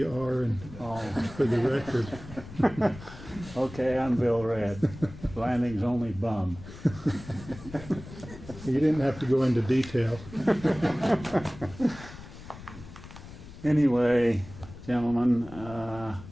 are and for the record. Okay, I'm Bill Red, Blanding's only bum. You didn't have to go into detail. Anyway, gentlemen,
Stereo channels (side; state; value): left; noise; rumble, 15 dB below the sound